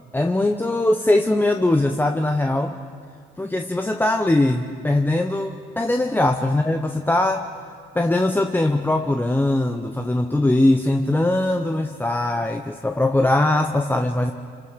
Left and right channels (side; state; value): both; normal; correlation 0.90